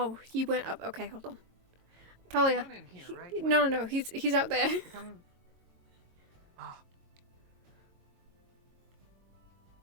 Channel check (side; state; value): left; late; 22 ms